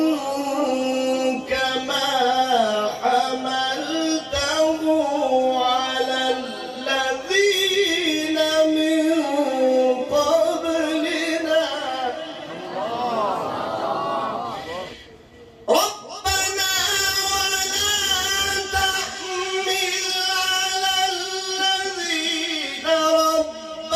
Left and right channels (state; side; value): identical; both; correlation 1.00